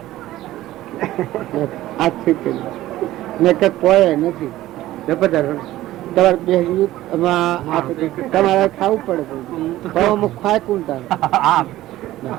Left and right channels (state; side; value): quieter; left; 15.4 dB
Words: આ છેતરી ને કે કોઈ નથી. તમારે બેસવું તમારે ખાવું પડે. ખાય કોણ